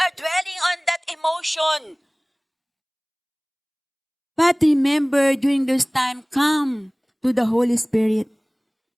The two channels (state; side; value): identical; both; correlation 1.00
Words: are dwelling on that emotion. But remember, during this time, come to the Holy Spirit.